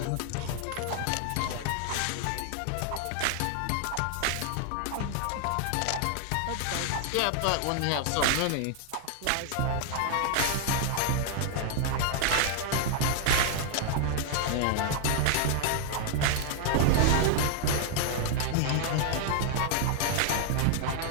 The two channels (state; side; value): different; both; correlation 0.00